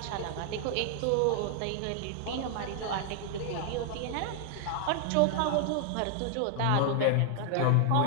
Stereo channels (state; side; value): different; both; correlation 0.00